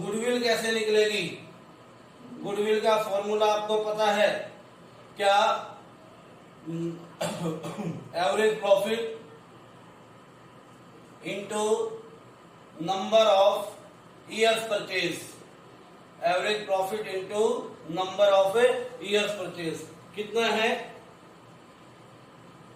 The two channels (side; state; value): both; identical; correlation 1.00